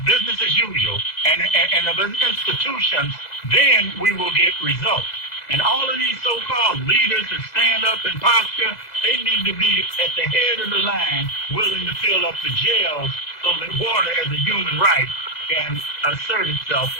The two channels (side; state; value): right; late; 2.0 ms